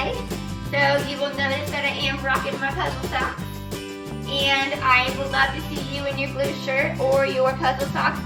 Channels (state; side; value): identical; both; correlation 1.00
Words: So you will notice that I am rocking my puzzle socks. And I would love to see you in your blue shirt or your puzzle socks